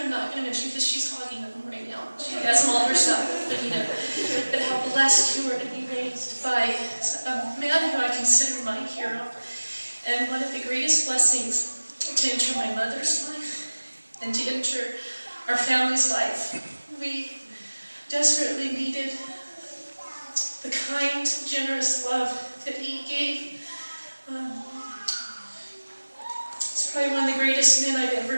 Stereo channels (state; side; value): inverted; both; correlation -1.00